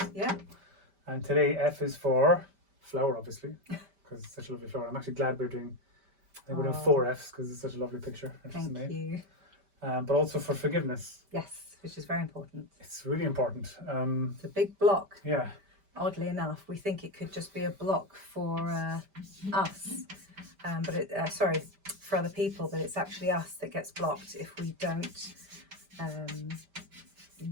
Yeah. And today F is for flower, obviously, because it's such a lovely flower. I'm actually glad we're doing 4 F's because it's such a lovely picture. Thank you. But also for forgiveness. Yes, which is very important. It's really important. It's a big block. Yeah. Oddly enough, we think it could just be a block for us, for other people, but it's actually us that gets blocked if we don't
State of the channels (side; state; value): left; late; 5.1 ms